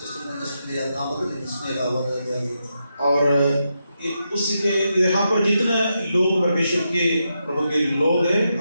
और उसी के यहाँ पर जितने लोग परमेश्वर के प्रभु के लोग हैं,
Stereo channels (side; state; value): both; inverted; correlation -0.85